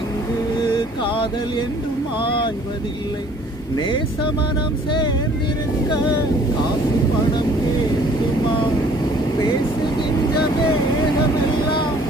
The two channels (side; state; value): both; normal; correlation 0.55